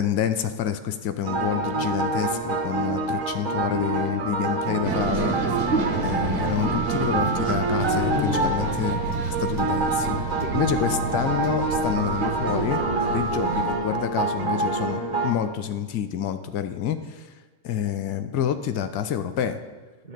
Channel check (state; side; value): late; right; 2.1 ms